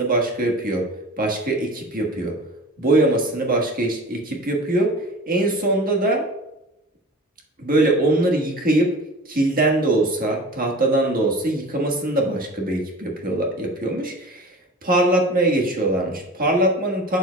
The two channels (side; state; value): both; normal; correlation 0.38